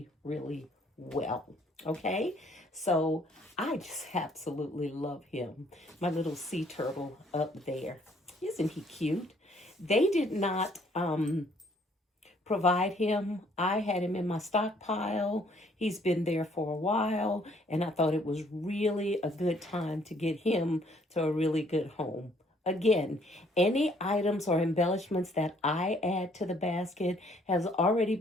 well. Okay, so I just absolutely love him, my little sea turtle up there. Isn't he cute? They did not provide him. I had him in my stockpile. He's been there for a while, and I thought it was really a good time to get him to a really good home. Again, any items or embellishments that I add to the basket has already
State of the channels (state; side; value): normal; both; correlation 0.63